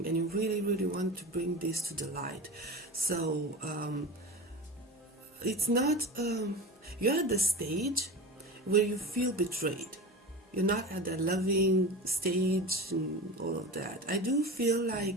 and you really want to bring this to the light. So it's not, you're at the stage where you feel betrayed. You're not at the loving stage and all of that. I do feel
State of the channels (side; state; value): both; normal; correlation 0.30